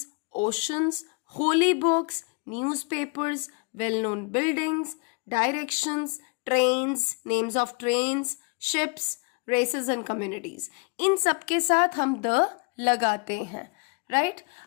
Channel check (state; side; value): quieter; right; 31.4 dB